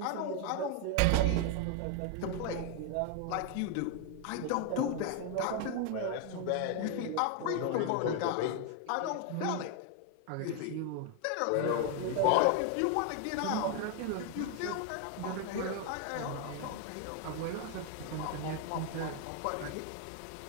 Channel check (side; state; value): both; different; correlation 0.01